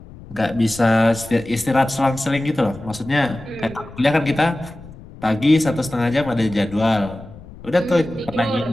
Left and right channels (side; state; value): left; noise; rumble, 18 dB below the sound